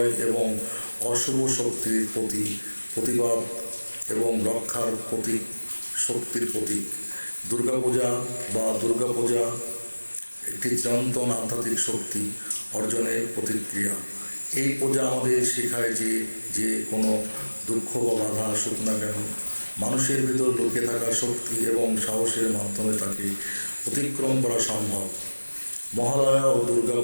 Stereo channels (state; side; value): inverted; both; correlation -1.00